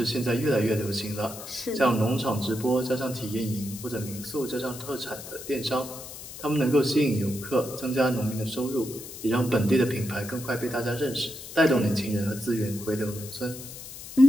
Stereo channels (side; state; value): left; noise; hiss, 12 dB below the sound